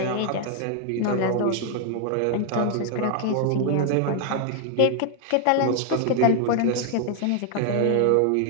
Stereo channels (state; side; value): different; both; correlation 0.00